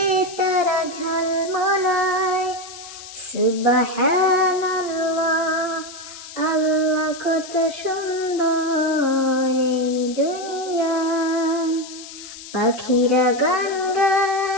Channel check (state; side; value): noise; left; hiss, 14 dB below the sound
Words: তারা ঝলমলায় সুবহানাল্লাহ আল্লাহ কত সুন্দর এই দুনিয়া। পাখিরা গান